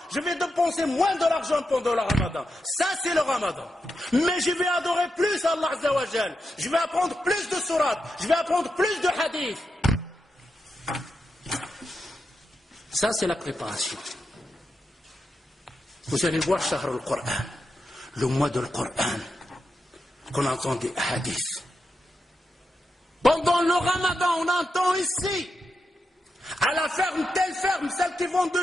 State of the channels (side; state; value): both; normal; correlation 0.87